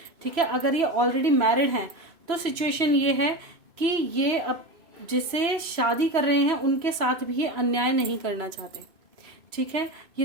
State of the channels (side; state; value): left; late; 3.0 ms